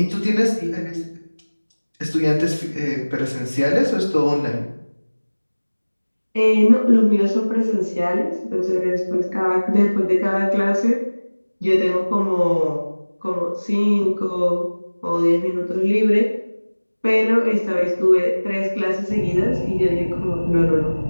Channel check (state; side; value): inverted; both; correlation -1.00